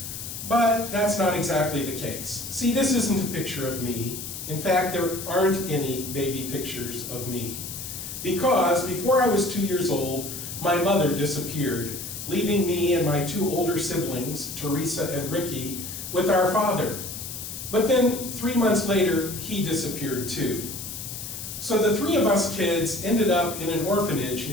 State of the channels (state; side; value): noise; left; hiss, 8 dB below the sound